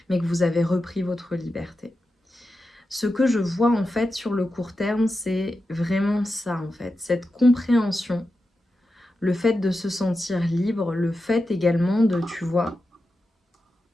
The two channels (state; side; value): normal; both; correlation 0.90